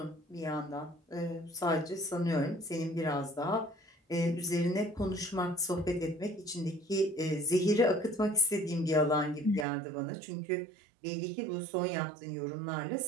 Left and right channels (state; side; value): drops out; left; at 9.7 s